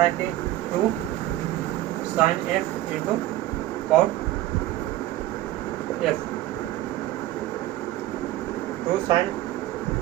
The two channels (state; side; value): quieter; left; 15.4 dB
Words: है कि 2 sine F into cot F, 2 sine